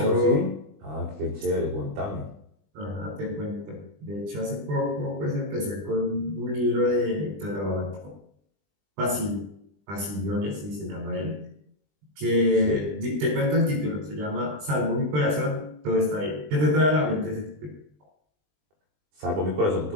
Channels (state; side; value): late; left; 20 ms